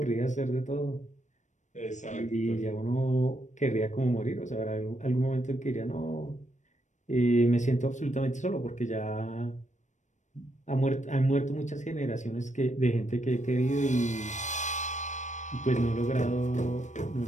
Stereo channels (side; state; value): right; late; 0.35 ms